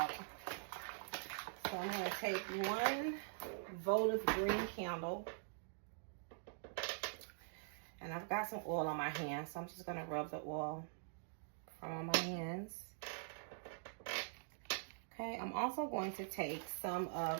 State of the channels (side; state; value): left; silent; digital silence